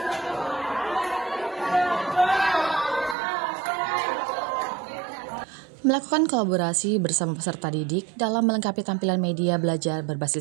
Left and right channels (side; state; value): left; drops out; at 3.2 s